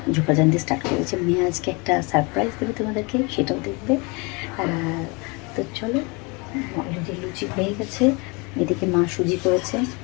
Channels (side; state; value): right; quieter; 29.2 dB